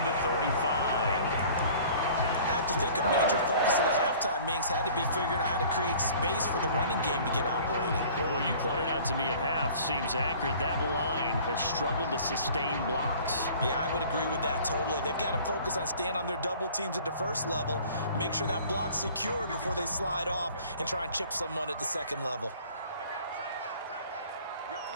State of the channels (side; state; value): both; inverted; correlation -0.49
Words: the 35. I have to think a major focus at the halftime meetings had to be figuring out how to create space for the running game to get operating. Well, what you pointed out to me at half seems accurate. That line has struggled to sustain blocks. Yeah, I would agree with that totally. They've got to focus on staying on their double teams at the first level, make sure that block's secured before they slide off and try and chip someone at the second level.